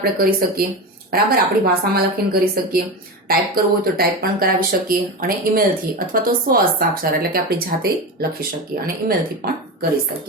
કરી શકીએ, બરાબર, આપણી ભાષામાં લખીને કરી શકીએ, ટાઈપ કરવું હોય તો ટાઈપ પણ કરાવી શકીએ, અને ઈમેલથી અથવા તો સ્વ હસ્તાક્ષર એટલે કે આપણી જાતે લખી શકીએ અને ઈમેલથી પણ કરી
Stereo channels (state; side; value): normal; both; correlation 0.22